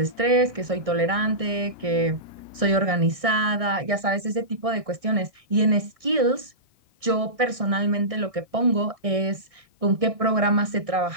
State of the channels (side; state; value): left; late; 1.6 ms